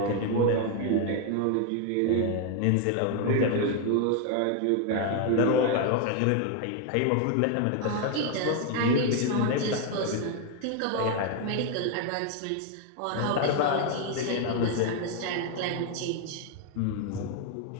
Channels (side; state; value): both; different; correlation 0.01